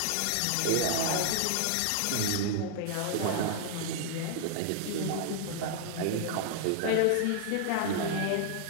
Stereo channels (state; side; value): different; both; correlation -0.01